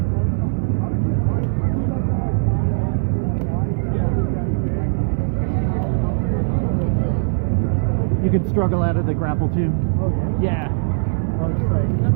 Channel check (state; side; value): silent; left; 58 dB below the other